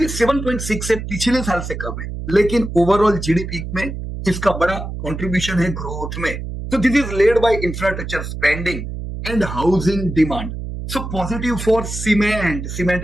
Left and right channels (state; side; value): noise; right; hum, 7 dB below the sound